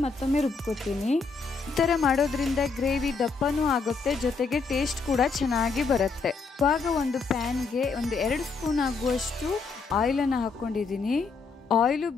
ಮತ್ತೊಮ್ಮೆ ರುಬ್ಕೊತೀನಿ. ಈ ಥರ ಮಾಡೋದ್ರಿಂದ ಗ್ರೇವಿ ದಪ್ಪನೂ ಆಗುತ್ತೆ, ಜೊತೆಗೆ ಟೇಸ್ಟ್ ಕೂಡ ಚೆನ್ನಾಗಿ ಬರುತ್ತೆ. ಇವಾಗ ಒಂದು ಪ್ಯಾನ್ಗೆ ಒಂದು 2 ಸ್ಪೂನ್ ಆಗುವಷ್ಟು ಆಯಿಲನ್ನು ಹಾಕ್ಕೊಂಡಿದ್ದೀನಿ. ಆಯಿಲು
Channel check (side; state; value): right; quieter; 4.7 dB